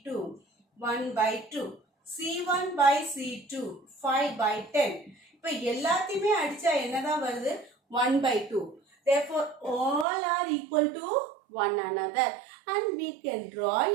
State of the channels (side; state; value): left; drops out; at 10.1 s